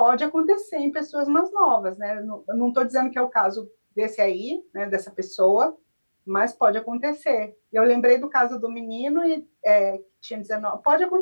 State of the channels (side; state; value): both; inverted; correlation -1.00